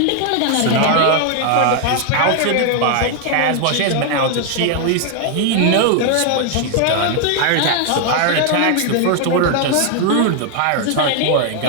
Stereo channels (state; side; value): different; both; correlation 0.00